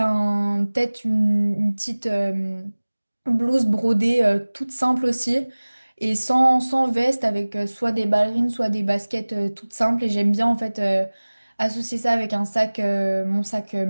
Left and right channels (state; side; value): inverted; both; correlation -1.00